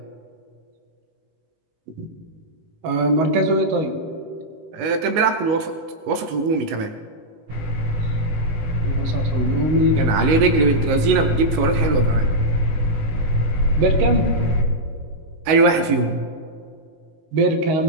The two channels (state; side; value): late; left; 19 ms